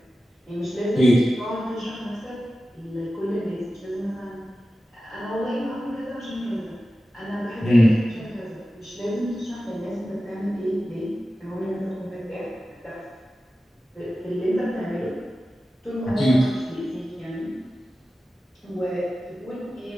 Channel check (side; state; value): both; normal; correlation 0.94